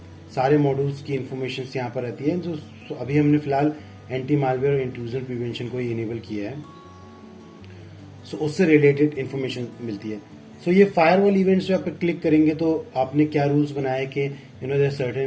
सारे मॉड्यूल्स की इंफॉर्मेशन यहाँ पर रहती है। जो अभी हमने फिलहाल एंटी मालवेयर और इंट्रूजन प्रिवेंशन को इनेबल किया है, सो उससे रिलेटेड इंफॉर्मेशन मिलती है। सो ये फायरवॉल इवेंट्स पे आप क्लिक करेंगे तो आपने क्या रूल्स बनाए कि देयर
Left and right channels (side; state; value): both; identical; correlation 1.00